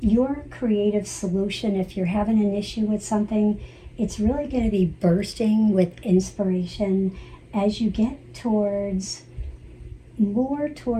creative solution, if you're having an issue with something, it's really going to be bursting with inspiration as you get more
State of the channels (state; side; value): identical; both; correlation 1.00